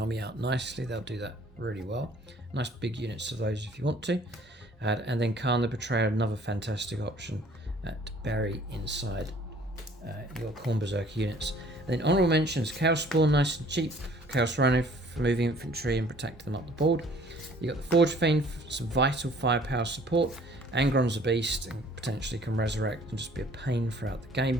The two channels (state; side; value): normal; both; correlation 0.55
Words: out nicely. They'll do that really well. Nice big units of those if you want to. And then Khan the Betrayer, another fantastic option to bury inside your Khorne Berserker units. And then honourable mentions, Chaos Spawn, nice and cheap. Chaos Rhino for moving infantry and protecting them up the board. You got the Forge Fiend for some vital firepower support. Angron's a beast and potentially can resurrect and just be a pain throughout the